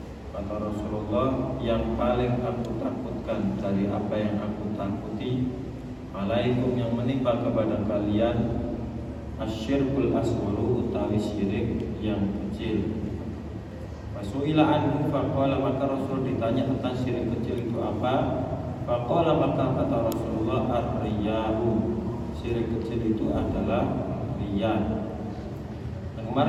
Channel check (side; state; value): both; identical; correlation 1.00